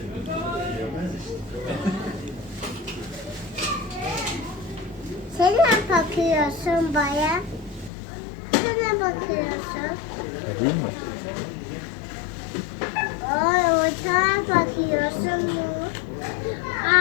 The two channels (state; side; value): drops out; right; at 7.9 s